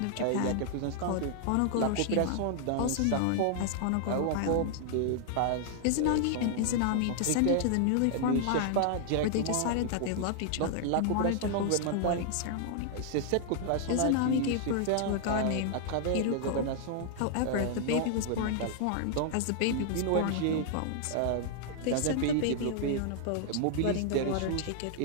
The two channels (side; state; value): both; different; correlation 0.00